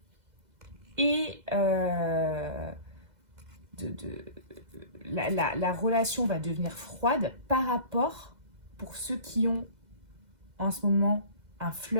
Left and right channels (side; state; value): left; late; 2.0 ms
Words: et la relation va devenir froide par rapport, pour ceux qui ont en ce moment un